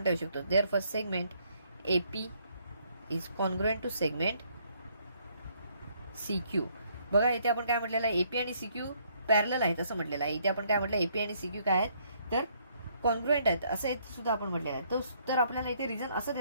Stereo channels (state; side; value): inverted; both; correlation -0.68